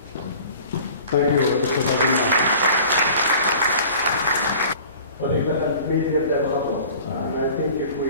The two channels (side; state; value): both; inverted; correlation -0.45